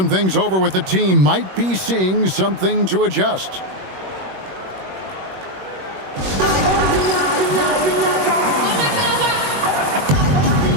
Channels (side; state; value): left; late; 21 ms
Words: things over with the team. Might be seeing something to adjust.